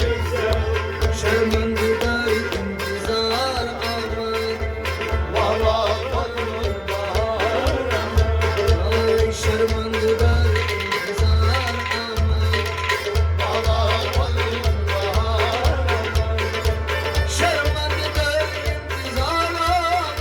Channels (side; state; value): both; identical; correlation 1.00